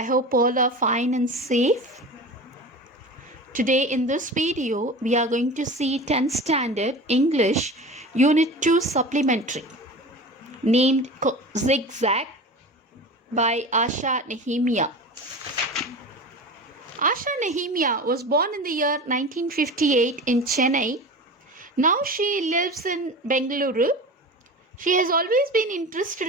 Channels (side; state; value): both; normal; correlation 0.33